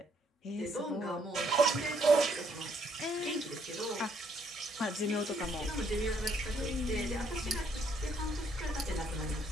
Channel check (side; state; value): both; normal; correlation 0.69